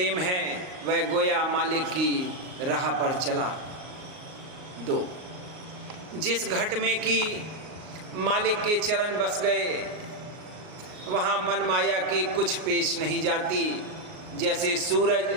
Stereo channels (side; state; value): left; late; 38 ms